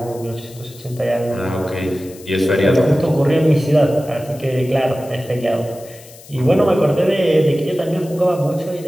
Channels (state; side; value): noise; left; hiss, 21 dB below the sound